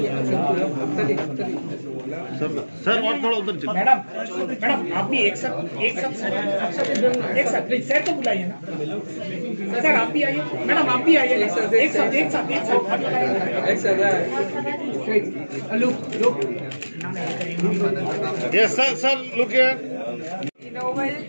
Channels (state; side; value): inverted; both; correlation -1.00